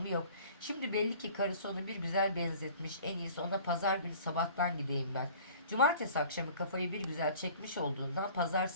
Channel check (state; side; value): inverted; both; correlation -0.47